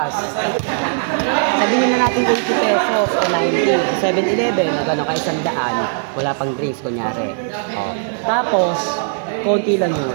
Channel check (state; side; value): silent; left; 67 dB below the other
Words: Sabihin na natin 80 pesos o 90. 7-Eleven, na gano'n ka 100. Wala pang drinks, kunyari. Oh. Tapos, konti lang yung